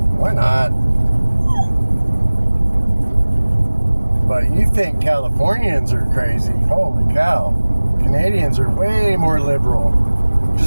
Why not? But you think Californians are crazy. Holy cow. Canadians are way more liberal.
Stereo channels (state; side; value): inverted; both; correlation -1.00